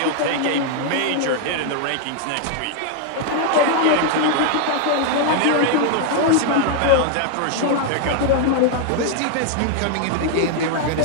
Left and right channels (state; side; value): different; both; correlation 0.00